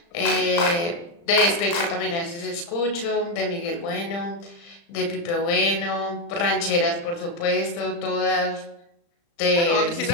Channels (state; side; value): late; right; 35 ms